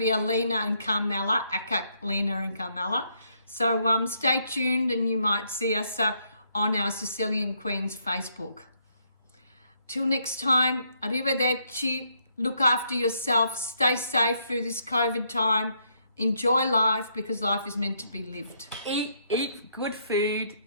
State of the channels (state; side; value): inverted; both; correlation -0.73